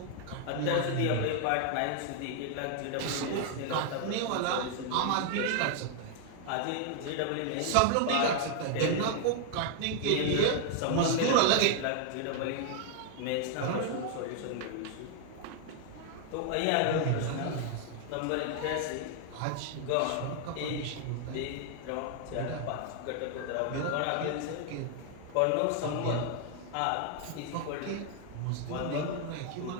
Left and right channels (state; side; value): different; both; correlation 0.00